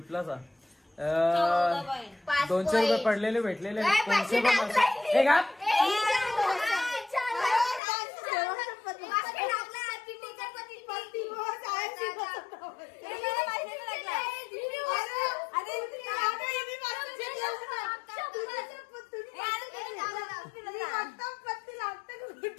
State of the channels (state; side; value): drops out; right; at 7.8 s